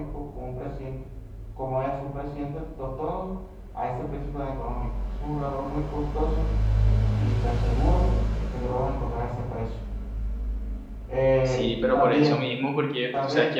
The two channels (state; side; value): identical; both; correlation 1.00